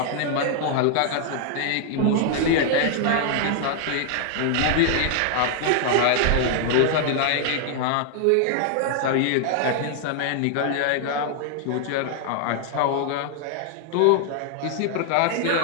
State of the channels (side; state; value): both; different; correlation 0.00